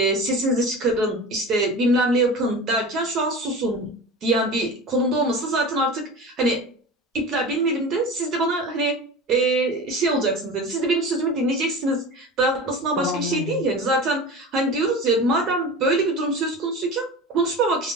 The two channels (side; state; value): both; normal; correlation 0.32